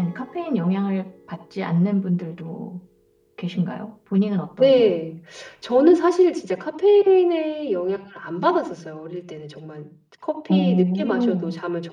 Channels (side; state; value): both; identical; correlation 1.00